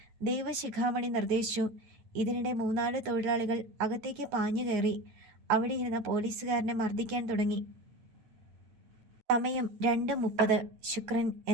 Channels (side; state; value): left; late; 9.3 ms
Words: ദേവശിഖാമണി നിർദ്ദേശിച്ചു. ഇതിനിടെ 3-4 തൊഴിലാളികൾ അകത്തേക്ക് പാഞ്ഞു കയറി. അവിടെ ഇരുന്ന പോലീസുകാരനെ മർദ്ദിക്കാൻ തുടങ്ങി. സമയം 2:30. ശുക്രൻ